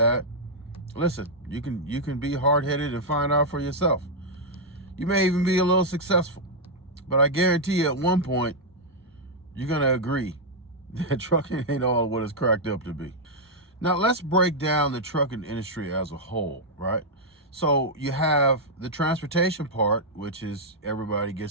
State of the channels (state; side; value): normal; both; correlation -0.04